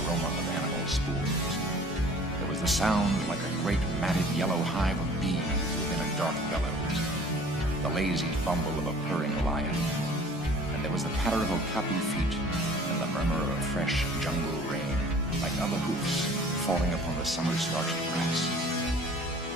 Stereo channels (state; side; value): normal; both; correlation 0.49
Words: of animal spools. There was the sound like a great matted yellow hive of bees within a dark bellows, the lazy bumble of a purring lion, and there was the patter of okapi feet and the murmur of fresh jungle rain, like other hoofs falling upon the summer-starched grass.